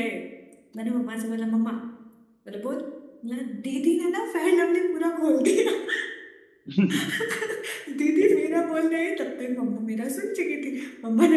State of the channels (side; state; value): both; identical; correlation 1.00